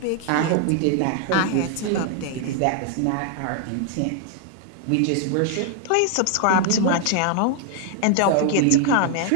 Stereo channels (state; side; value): different; both; correlation 0.00